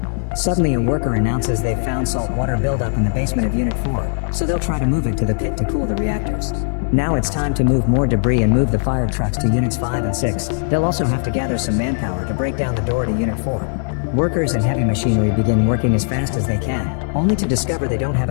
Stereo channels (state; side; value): silent; right; 62 dB below the other